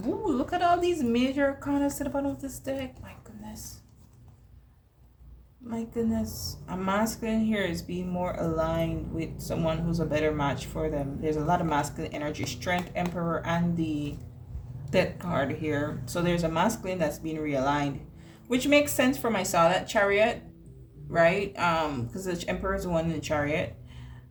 Ooh, look at all these major arcanas to the bottom of this deck. My goodness. My goodness. A masculine here is being more aligned with someone who's a better match for them. There's a lot of masculine energy. Strength, Emperor, and the Death card here. So there's a masculine that's being realigned, which makes sense for my Natal Chariot, right? Because the Emperor is the one in the Chariot.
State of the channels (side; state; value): both; identical; correlation 1.00